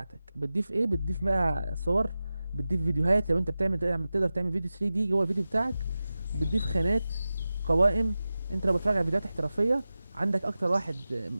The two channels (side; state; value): both; inverted; correlation -0.94